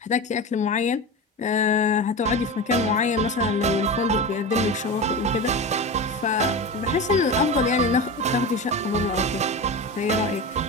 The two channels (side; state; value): both; normal; correlation 0.25